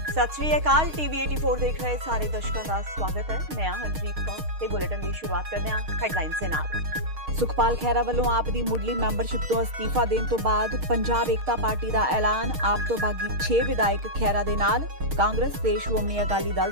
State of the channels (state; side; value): late; left; 4.2 ms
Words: सत श्री अकाल। टीवी 84 देख रहे सारे दर्शकों का स्वागत है। मैं हरप्रीत कौर ते बुलेटिन की शुरुआत करते हैं हेडलाइन से नाल। सुखपाल खैरा वालों आप दी मुढ़ली मैंबरशिप तो अस्तीफा देने तो बाद पंजाब एकता पार्टी का ऐलान। आप तो बागी 6 विधायक खैरा दे नाल। कांग्रेस ते श्रोमणी अकाली दल